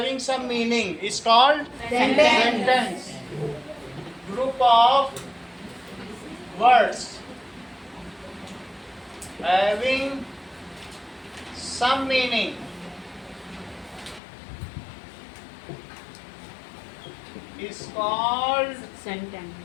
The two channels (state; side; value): drops out; right; at 14.2 s